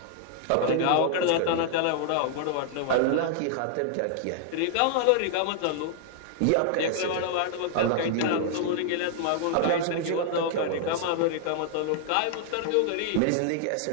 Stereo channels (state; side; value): different; both; correlation -0.01